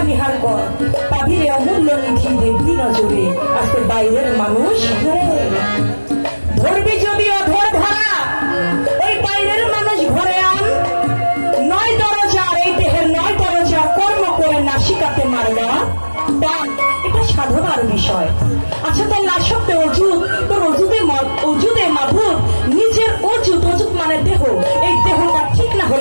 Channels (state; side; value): inverted; both; correlation -1.00